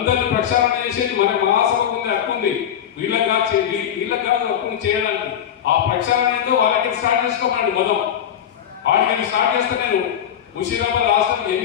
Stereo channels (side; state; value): right; quieter; 9.5 dB